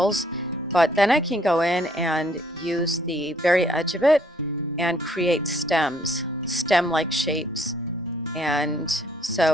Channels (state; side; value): normal; both; correlation 0.65